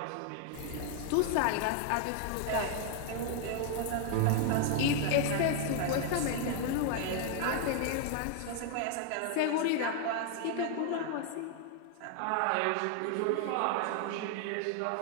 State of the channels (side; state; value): both; different; correlation 0.00